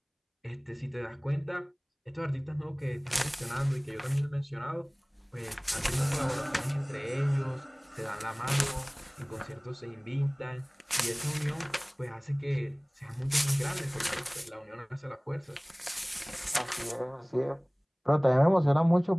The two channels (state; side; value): identical; both; correlation 1.00